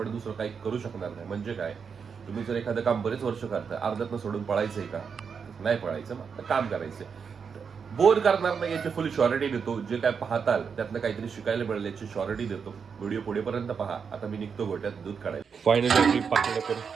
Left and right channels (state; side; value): quieter; left; 6.2 dB